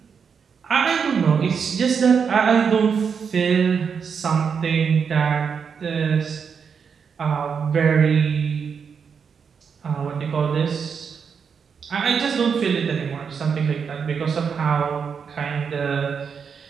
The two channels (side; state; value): left; quieter; 6.4 dB